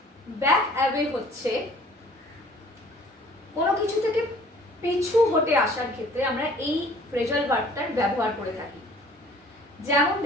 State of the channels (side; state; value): both; normal; correlation 0.53